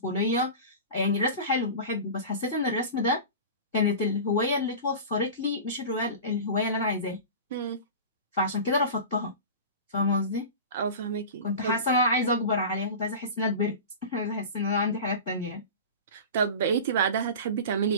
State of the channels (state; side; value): inverted; both; correlation -0.32